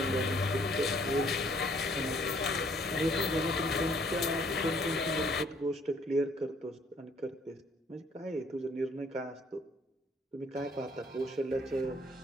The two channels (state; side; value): normal; both; correlation 0.62